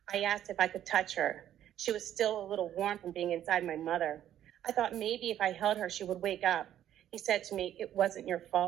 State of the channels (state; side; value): quieter; left; 11.2 dB